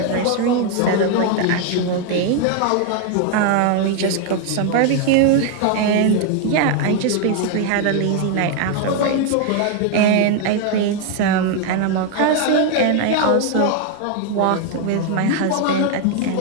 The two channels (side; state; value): both; different; correlation 0.01